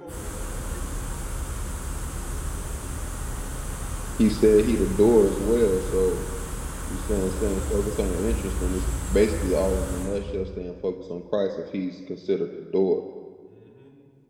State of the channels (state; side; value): identical; both; correlation 1.00